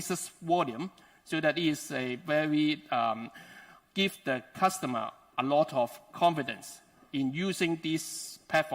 volume, so that it is a very give the customer a lot of confidence in using this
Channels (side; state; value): both; identical; correlation 1.00